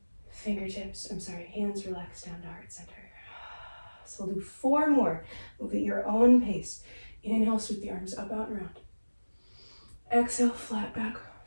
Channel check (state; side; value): inverted; both; correlation -1.00